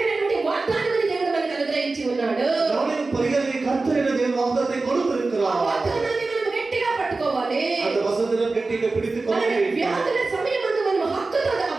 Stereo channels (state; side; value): quieter; left; 3.6 dB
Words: వాగ్దానాన్ని దేవుడు మనకు అనుగ్రహించి ఉన్నాడు. నాలుగవ పరిగారికి కర్తరైన దేవుడు వాగ్దానాన్ని கொடுத்திருக்கிறார். వాగ్దానాన్ని మనం గట్టిగా పట్టుకోవాలి. அந்த వసంతను గట్టిగా పిడిచుకోవాలి. వ్యాధుల సమయమందు మనం హక్కుతో ఆ